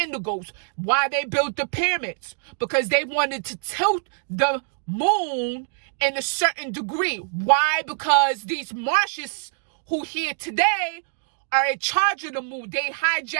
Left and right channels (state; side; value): silent; left; 58 dB below the other